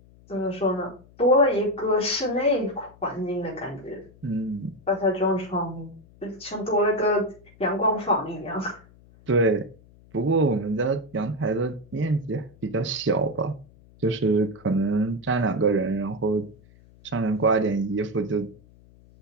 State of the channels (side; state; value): left; noise; hum, 26 dB below the sound